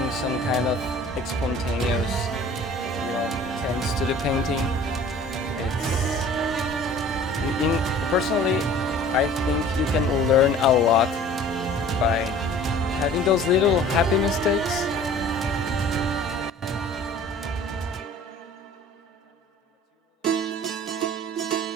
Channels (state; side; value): normal; both; correlation 0.47